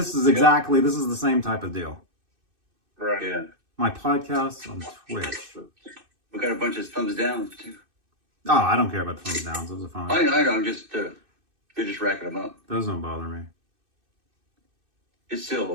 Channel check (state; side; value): late; left; 2.6 ms